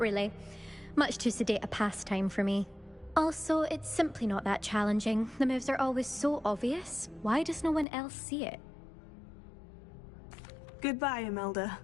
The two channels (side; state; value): right; drops out; at 7.9 s